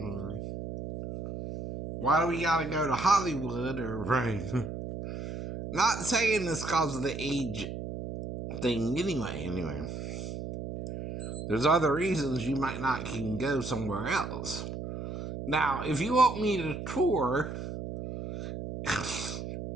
Why do we gotta go to Hollywood or right? Not saying this because of the age thing anyway. There's other reasons you might not can go somewhere else. Now, if you want me to tour,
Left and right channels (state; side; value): noise; right; hum, 7 dB below the sound